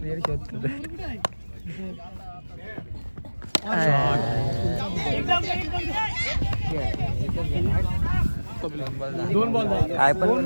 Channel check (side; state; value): both; inverted; correlation -1.00